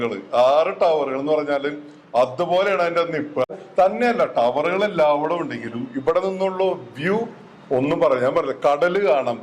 എന്ന് പറഞ്ഞാല് അതുപോലെയാണ് അതിന്റെ നിപ്പ്. തന്നെയല്ല, ടവറുകൾ എല്ലാവരും ഉണ്ടെങ്കിലും ഇവിടെ നിന്നുള്ള വ്യൂ ഒന്നും പറയാൻ പറ്റില്ല. കടല് കാണാം,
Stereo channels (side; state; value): both; identical; correlation 1.00